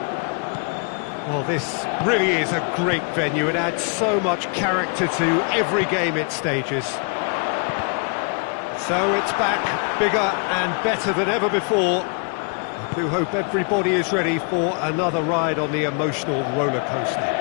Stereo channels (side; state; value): right; quieter; 38.7 dB